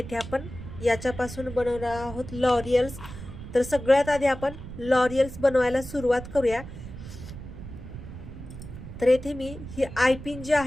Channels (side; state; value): right; noise; rumble, 12 dB below the sound